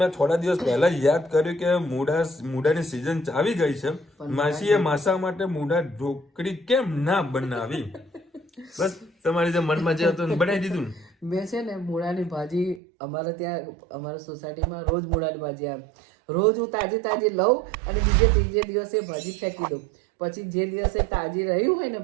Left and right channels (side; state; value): left; drops out; at 12.8 s